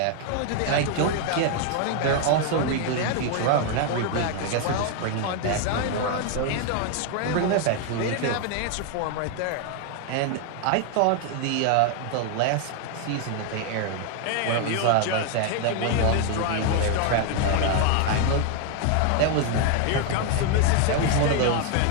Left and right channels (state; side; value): different; both; correlation 0.00